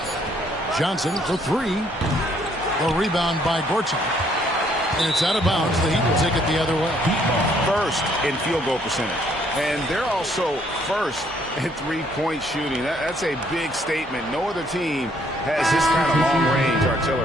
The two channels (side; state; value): both; normal; correlation 0.67